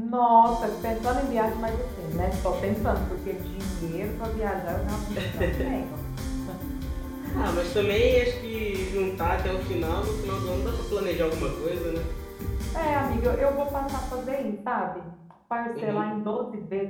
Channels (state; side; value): identical; both; correlation 1.00